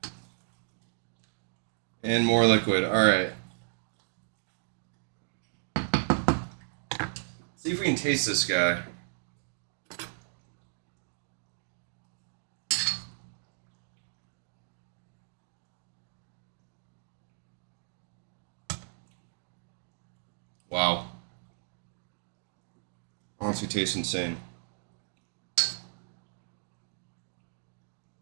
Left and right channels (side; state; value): left; silent; digital silence